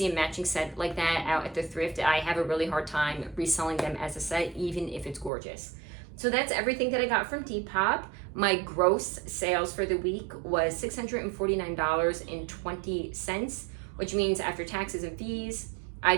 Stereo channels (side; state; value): left; drops out; at 5.3 s